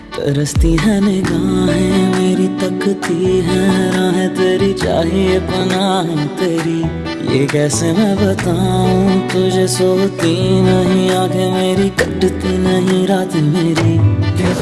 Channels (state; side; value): identical; both; correlation 1.00